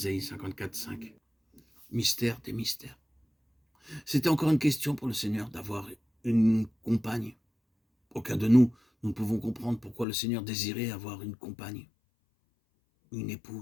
54,5. Mystère des mystères. C'était encore une question pour le Seigneur d'avoir une compagne. Aucun de nous ne pouvons comprendre pourquoi le Seigneur désirait avoir une compagne, une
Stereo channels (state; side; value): drops out; right; at 10.1 s